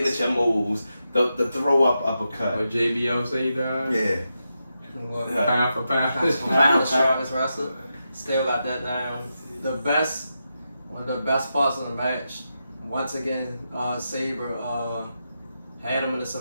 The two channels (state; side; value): inverted; both; correlation -0.87